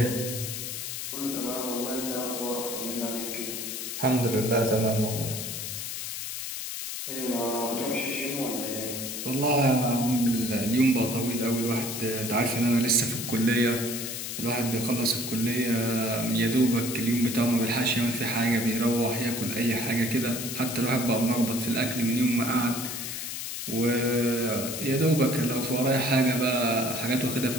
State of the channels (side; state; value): left; noise; hiss, 5 dB below the sound